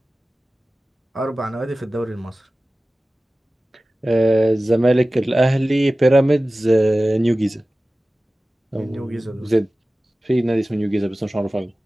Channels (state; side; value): normal; both; correlation 0.97